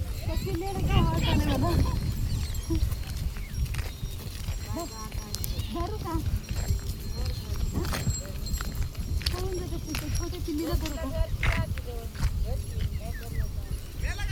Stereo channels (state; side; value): identical; both; correlation 1.00